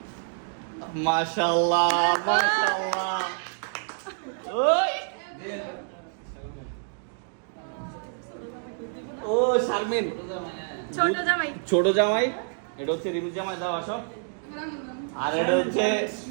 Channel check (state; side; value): silent; left; digital silence